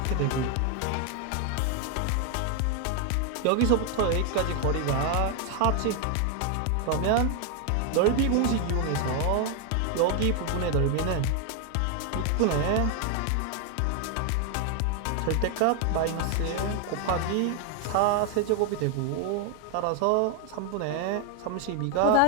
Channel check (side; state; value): both; different; correlation 0.01